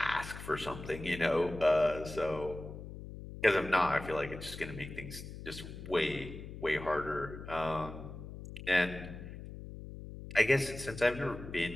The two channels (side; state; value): left; noise; hum, 11 dB below the sound